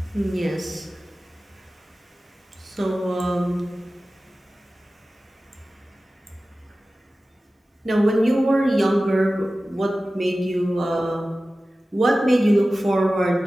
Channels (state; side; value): normal; both; correlation 0.96